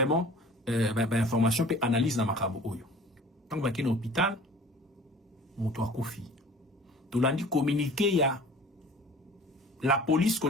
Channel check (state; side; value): normal; both; correlation 0.46